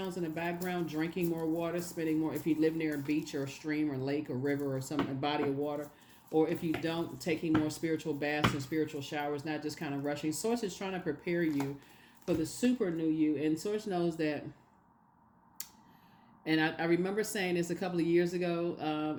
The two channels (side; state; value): both; identical; correlation 1.00